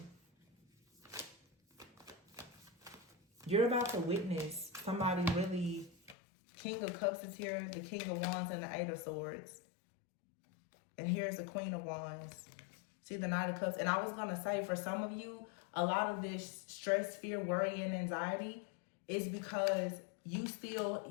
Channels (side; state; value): right; drops out; at 6.2 s